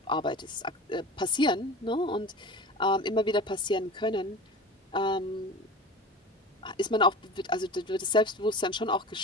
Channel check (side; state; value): both; normal; correlation 0.34